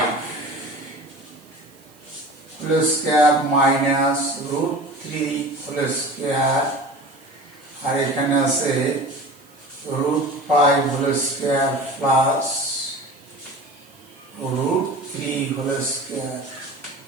whole square minus √3 whole square, আর এখানে আছে √5 whole square plus √3 whole square.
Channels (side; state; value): right; noise; hiss, 28 dB below the sound